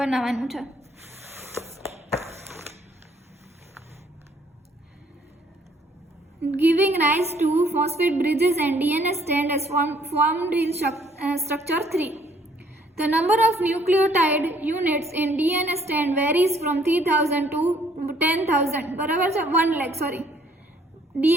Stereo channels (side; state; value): both; normal; correlation 0.63